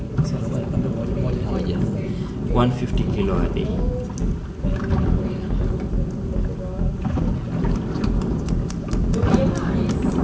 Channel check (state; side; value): identical; both; correlation 1.00